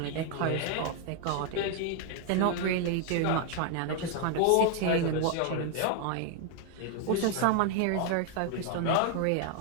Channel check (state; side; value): different; both; correlation 0.00